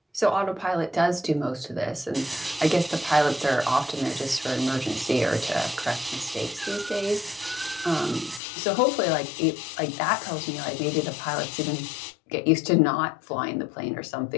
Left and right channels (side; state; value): right; drops out; at 8.4 s